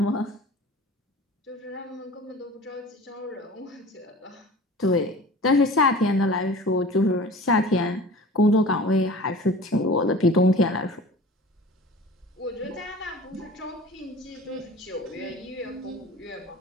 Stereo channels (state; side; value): normal; both; correlation 0.40